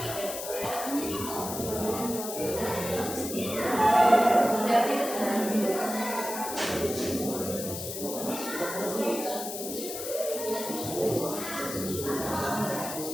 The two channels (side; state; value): left; noise; hiss, 7 dB below the sound